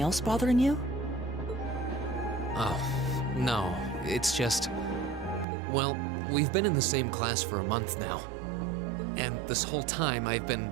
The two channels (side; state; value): left; drops out; at 5.5 s